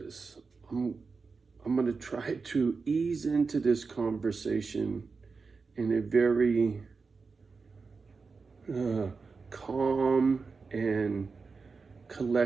I'm going to try to ease into this conversation in a very calm and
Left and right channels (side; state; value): left; quieter; 4.6 dB